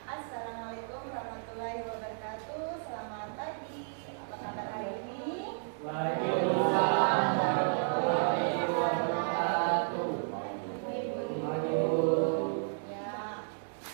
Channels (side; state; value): left; silent; digital silence